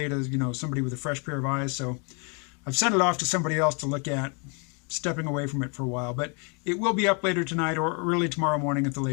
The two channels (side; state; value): right; quieter; 35.5 dB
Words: to, somebody with a fresh pair of eyes. So I've sent it off to somebody else to look at, stepping away from it for a while. But it will be up later tonight or early tomorrow morning at the